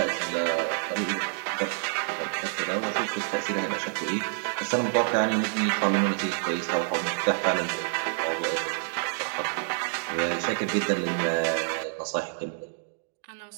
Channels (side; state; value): left; silent; 60 dB below the other